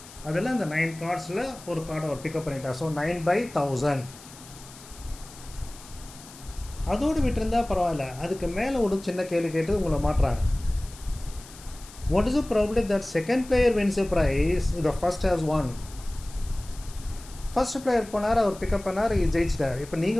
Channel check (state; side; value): noise; left; hiss, 19 dB below the sound